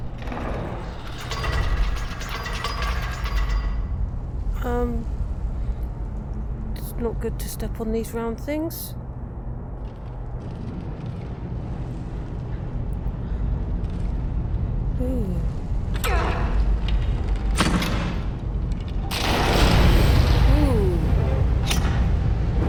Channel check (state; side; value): identical; both; correlation 1.00